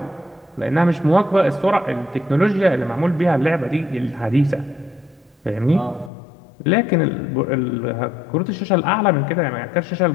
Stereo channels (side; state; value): right; drops out; at 6.1 s